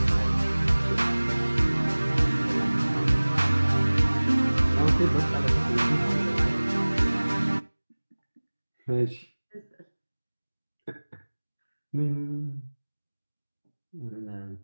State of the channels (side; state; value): both; inverted; correlation -1.00